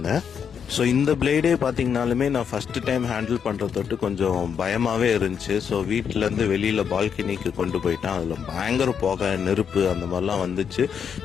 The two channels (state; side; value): quieter; right; 7.4 dB